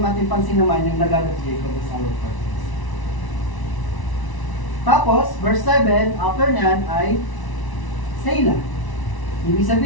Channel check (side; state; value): right; late; 1.0 ms